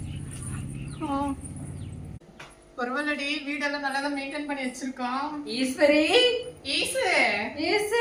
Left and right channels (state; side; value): identical; both; correlation 1.00